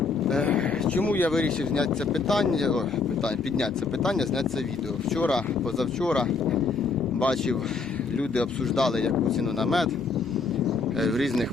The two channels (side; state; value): right; quieter; 4.5 dB